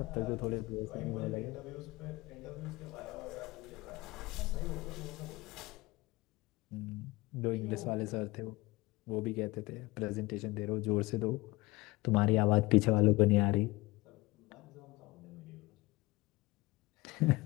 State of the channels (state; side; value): quieter; right; 21.7 dB